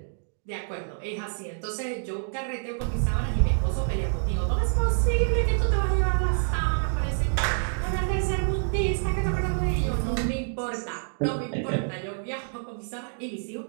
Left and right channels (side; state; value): left; silent; digital silence